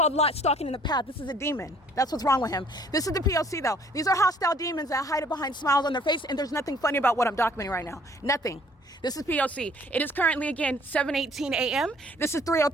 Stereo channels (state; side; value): normal; both; correlation 0.58